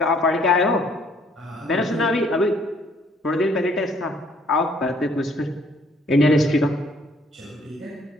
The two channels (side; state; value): both; normal; correlation 0.62